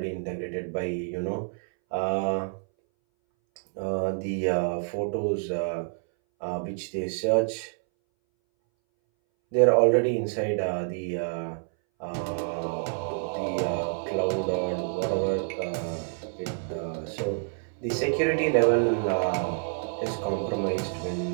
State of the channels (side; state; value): left; silent; 59 dB below the other